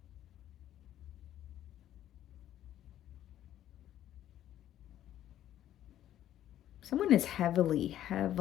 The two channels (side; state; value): right; quieter; 12.0 dB